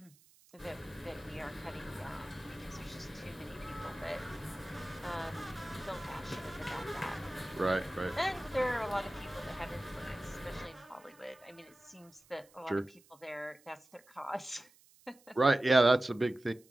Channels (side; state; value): right; noise; hiss, 28 dB below the sound